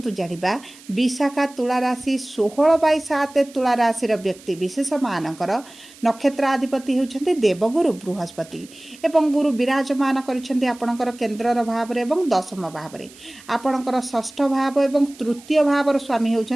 जाना विशाखा तुला राशि 16/7 तुला राशि व्यक्ति विशेष मानकर नक्षत्राधिपति होउछंती देवगुरु बृहस्पति एवं गुरु विराजमान करिसेंती आपणकर केंद्रर भाव रे एवं दशम भाव रे आपणकर षष्ठ भाव एवं तृतीय भावर स्वामी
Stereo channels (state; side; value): noise; right; hiss, 22 dB below the sound